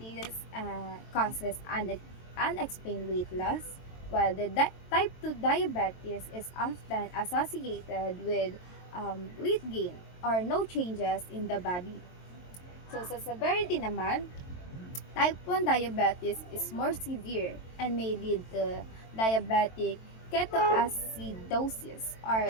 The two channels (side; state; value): right; late; 22 ms